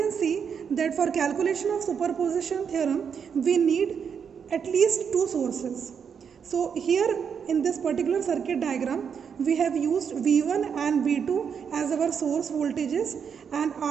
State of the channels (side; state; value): left; quieter; 7.0 dB